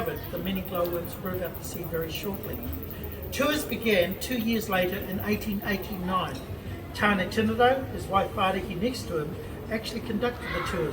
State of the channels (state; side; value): identical; both; correlation 1.00